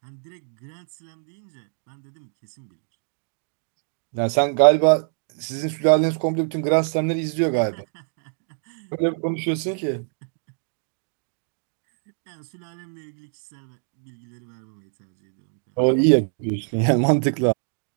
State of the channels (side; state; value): left; silent; 62 dB below the other